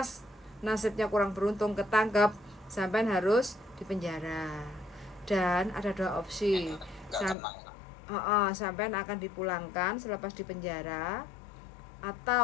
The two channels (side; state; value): right; drops out; at 7.4 s